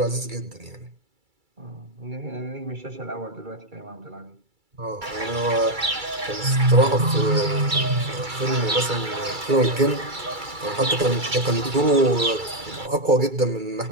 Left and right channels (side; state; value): left; late; 2.3 ms